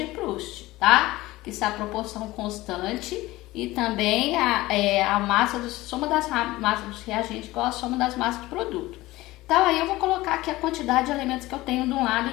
Proust, tá? Que é a proporção constante e também a soma das massas dos reagentes igual a soma das massas do produto. Então, aí eu vou colocar aqui a quantidade de elementos que eu tenho de um lado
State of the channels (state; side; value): quieter; right; 18.5 dB